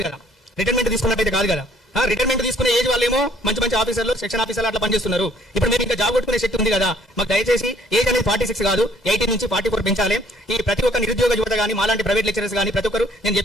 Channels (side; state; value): both; normal; correlation 0.61